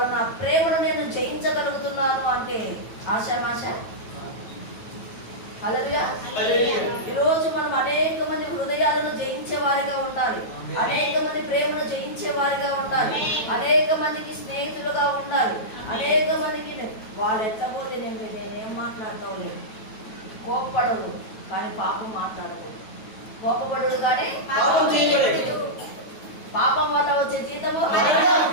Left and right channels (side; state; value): right; late; 9.2 ms